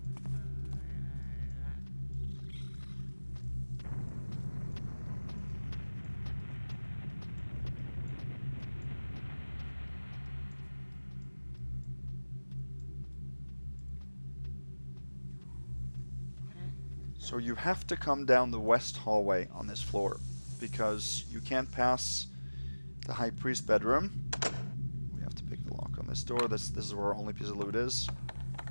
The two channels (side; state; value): both; inverted; correlation -1.00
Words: So you have to come down the west hallway on this floor, because you can't pass the High Priest bedroom. We have to pick the lock on this door. This is where our only piece of loot is.